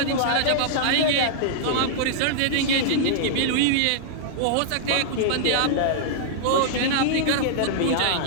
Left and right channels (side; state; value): both; different; correlation -0.02